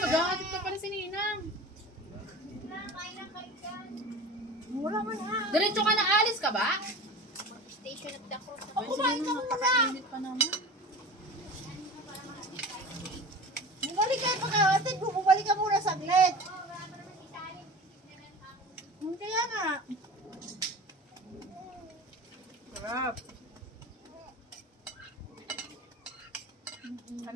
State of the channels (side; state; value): both; normal; correlation 0.35